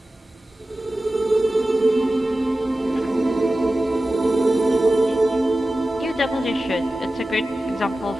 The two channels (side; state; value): both; normal; correlation 0.95